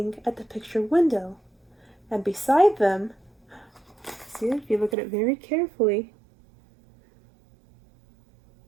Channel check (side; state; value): left; drops out; at 5.0 s